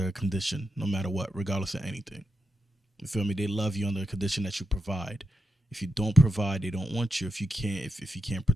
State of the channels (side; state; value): both; normal; correlation 0.85